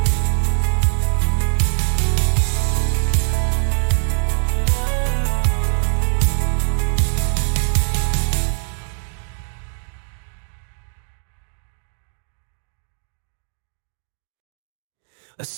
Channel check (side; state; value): left; silent; 63 dB below the other